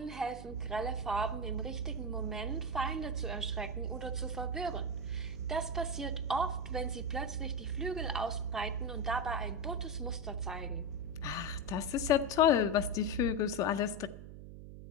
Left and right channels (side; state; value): right; noise; hum, 12 dB below the sound